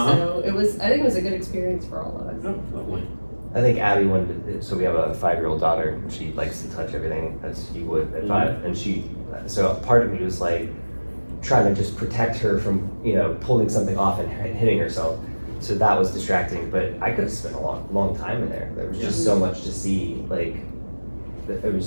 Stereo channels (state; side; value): inverted; both; correlation -1.00